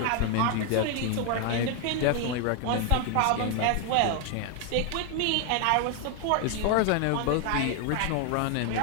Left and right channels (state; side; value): different; both; correlation 0.01